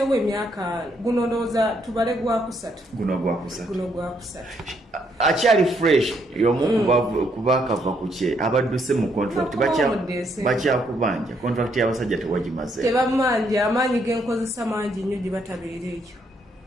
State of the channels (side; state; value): both; normal; correlation 0.73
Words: emyaka guno ndowooza tubale gwakusatu. Guno gwakusatu. Akyali fresh y'omu kubakava ku kye abadduse mu contract bakyakubanja contract y'abasajja tewagimaze. Tebamanja amaanyi genkozesa mangi nnyo gye batabeera ekyo.